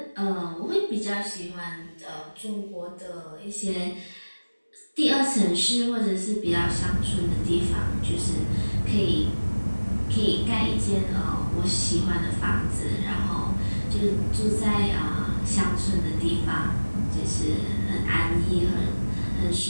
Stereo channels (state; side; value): inverted; both; correlation -1.00